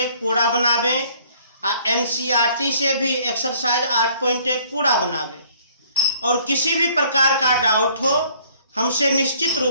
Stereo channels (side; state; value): both; inverted; correlation -0.59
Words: पूरा बनावें, NCERT से भी एक्सरसाइज 8.1 पूरा बनावें और किसी भी प्रकार का डाउट हो हमसे निश्चित